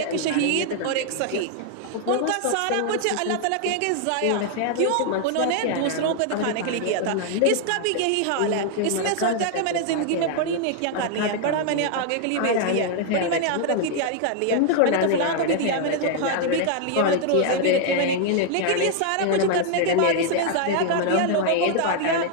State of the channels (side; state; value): both; different; correlation 0.00